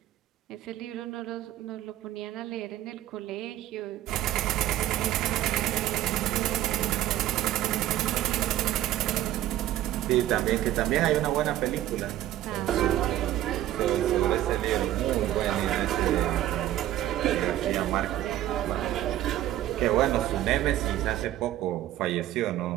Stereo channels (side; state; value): left; quieter; 13.4 dB